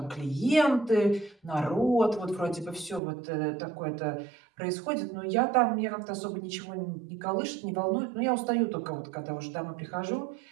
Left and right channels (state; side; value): drops out; left; at 3.0 s